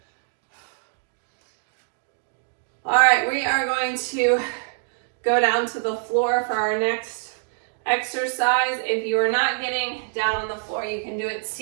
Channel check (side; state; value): left; silent; digital silence